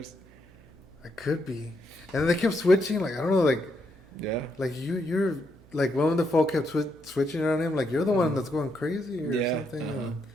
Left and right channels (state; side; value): noise; right; hum, 26 dB below the sound